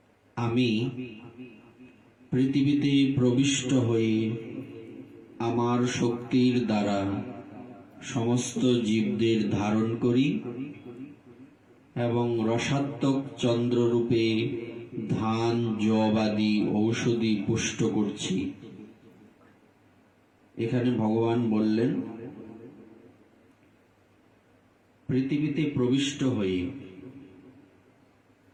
আমি পৃথিবীতে প্রবিষ্ট হয়ে আমার শক্তির দ্বারা সমস্ত জীবদের ধারণ করি এবং রসাত্মক চন্দ্ররূপে ধান যবাদি ঔষধি পুষ্ট করছি। এখানে ভগবান বললেন পৃথিবীতে প্রবিষ্ট হয়ে।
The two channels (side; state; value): both; identical; correlation 1.00